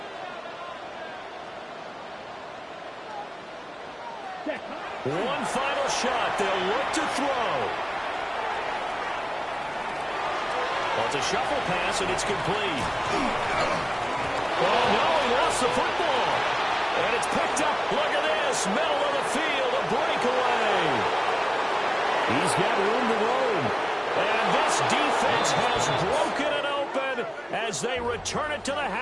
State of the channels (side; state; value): both; identical; correlation 1.00